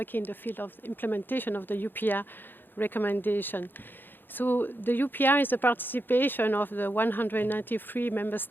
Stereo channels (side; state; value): right; late; 0.096 ms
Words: in the field of implementation of the UPR recommendation. So the UPR is the participation of the 193 member